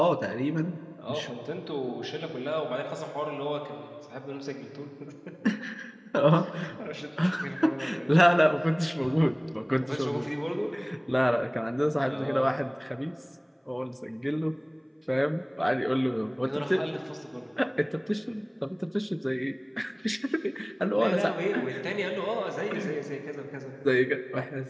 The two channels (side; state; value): both; identical; correlation 1.00